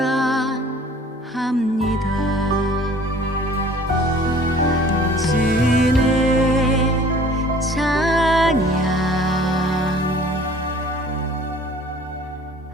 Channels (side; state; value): both; normal; correlation 0.51